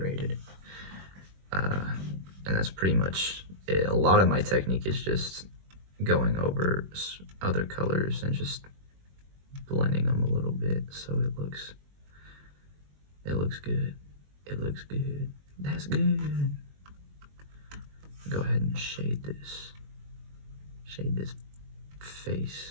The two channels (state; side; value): late; left; 21 ms